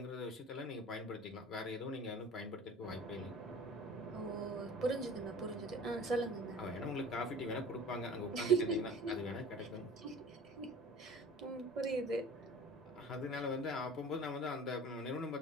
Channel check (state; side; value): normal; both; correlation 0.43